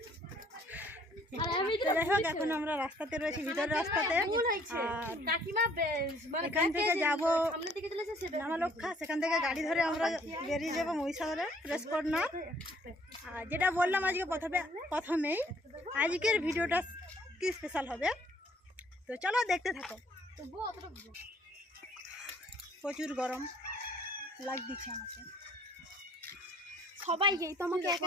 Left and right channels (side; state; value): both; normal; correlation 0.60